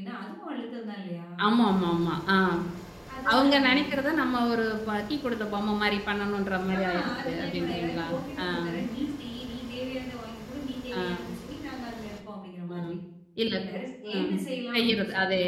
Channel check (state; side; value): identical; both; correlation 1.00